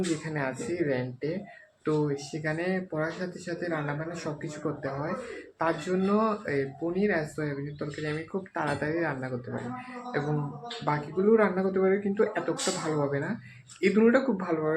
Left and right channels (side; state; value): both; identical; correlation 1.00